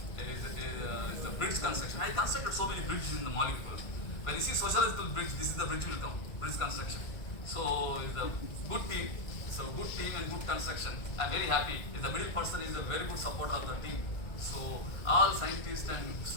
the bridge construction. I constructed so many bridges in the molecule. When you see sociological bridge, this is the bridge will come, bridge construction. So it's a good team. So good team and good construction. I'm very happy. The middle person is a very good supporter of the team. So all scientists and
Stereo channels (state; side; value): late; right; 1.8 ms